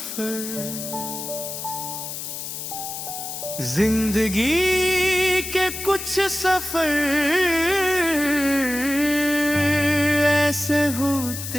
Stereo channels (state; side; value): noise; left; hiss, 7 dB below the sound